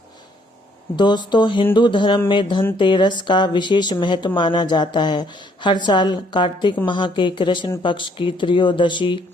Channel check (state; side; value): normal; both; correlation 0.66